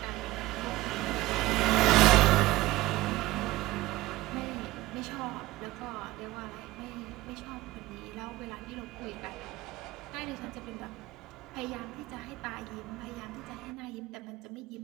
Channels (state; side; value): quieter; left; 18.2 dB